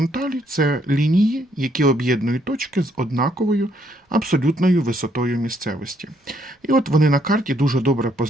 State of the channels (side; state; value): both; normal; correlation 0.70